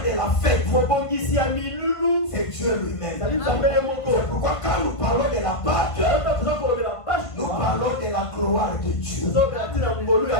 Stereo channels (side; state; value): right; late; 1.5 ms